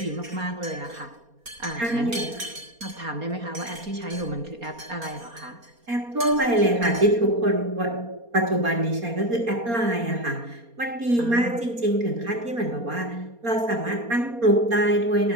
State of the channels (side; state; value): left; late; 4.3 ms